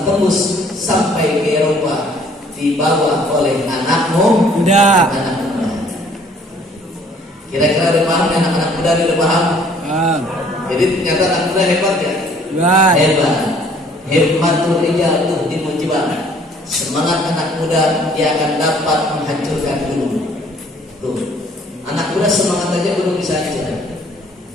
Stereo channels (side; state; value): both; normal; correlation 0.58